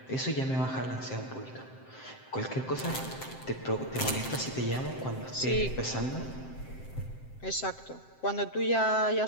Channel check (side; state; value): right; late; 7.7 ms